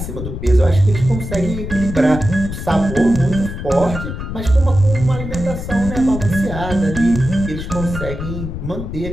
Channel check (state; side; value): noise; left; rumble, 7 dB below the sound